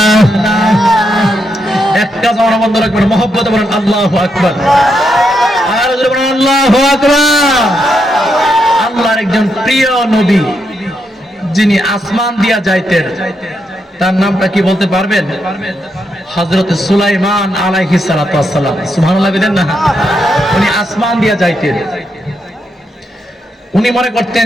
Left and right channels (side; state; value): both; normal; correlation 0.81